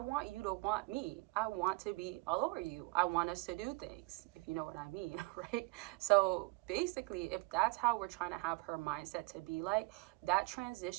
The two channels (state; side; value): quieter; left; 26.3 dB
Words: you to want me. I want to be all over you. I want us to do things, if you know what I mean, right? So basically, if that's how we're trying to have her mindset to be like, that